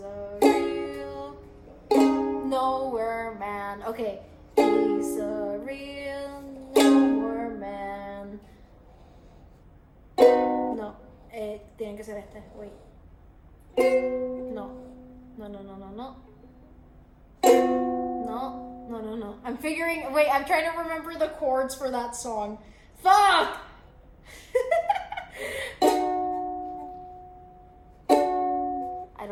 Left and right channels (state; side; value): identical; both; correlation 1.00